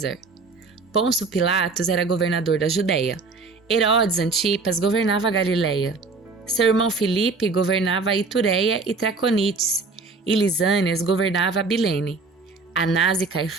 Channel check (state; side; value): quieter; left; 4.0 dB